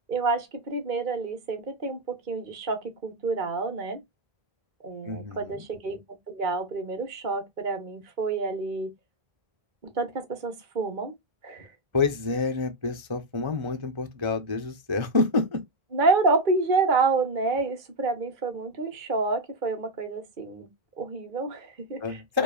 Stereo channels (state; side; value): late; left; 1.3 ms